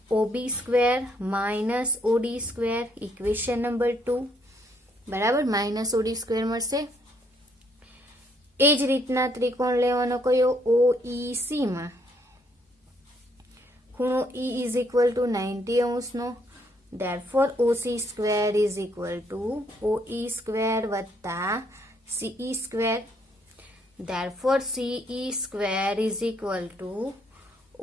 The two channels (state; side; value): normal; both; correlation 0.70